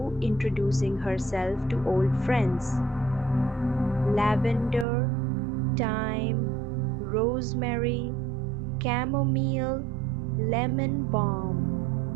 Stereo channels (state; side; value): drops out; left; at 4.9 s